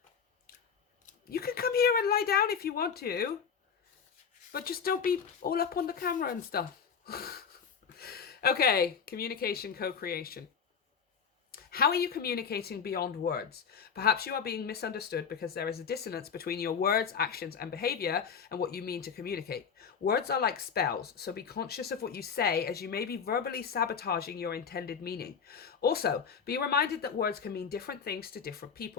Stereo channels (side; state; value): right; quieter; 6.5 dB